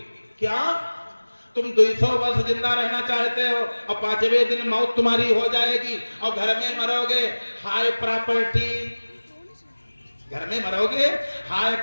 क्या तुम 200 वर्ष जिंदा रहना चाहते हो और 5वें दिन मौत तुम्हारी हो जाएगी और घर में मरोगे हाय प्रॉपर्टी, घर में मरोगे हाय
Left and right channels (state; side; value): inverted; both; correlation -1.00